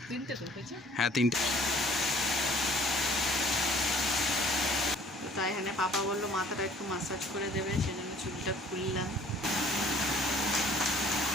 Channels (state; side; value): normal; both; correlation 0.55